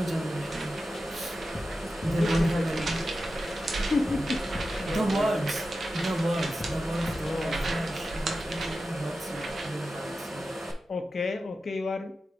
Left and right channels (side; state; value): both; normal; correlation 0.92